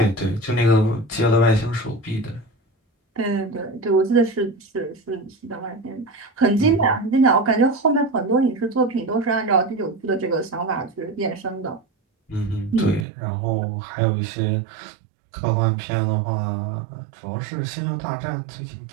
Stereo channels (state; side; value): drops out; left; at 13.1 s